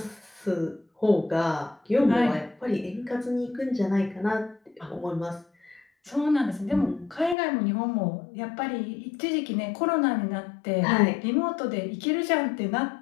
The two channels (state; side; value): drops out; right; at 7.4 s